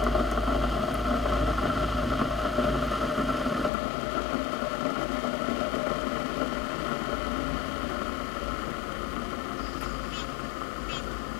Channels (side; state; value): right; drops out; at 3.7 s